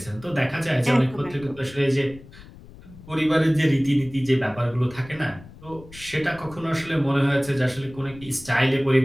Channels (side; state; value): left; noise; rumble, 19 dB below the sound